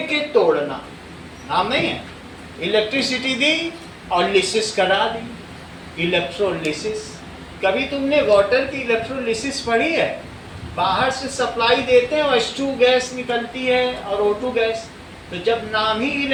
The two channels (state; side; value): identical; both; correlation 1.00